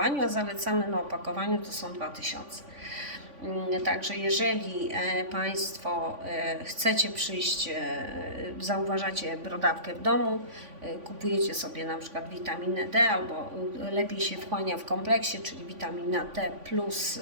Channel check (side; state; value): left; late; 3.5 ms